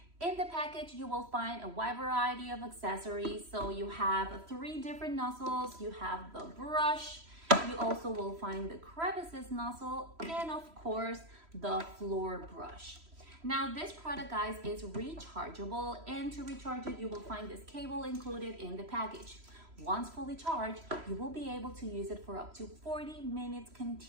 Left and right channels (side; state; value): left; late; 3.1 ms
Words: In the package, you will find a wide variety of accessories. So you have 3 different nozzles, you have the brush, you also will find the crevices nozzle, and of course, the floor brush. Now this product, guys, is rechargeable, and to recharge it, you will find this cable included in the package. Once fully charged, you will be able to use it for up to 40 minutes